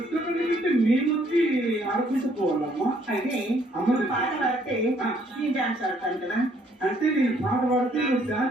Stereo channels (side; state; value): both; normal; correlation 0.65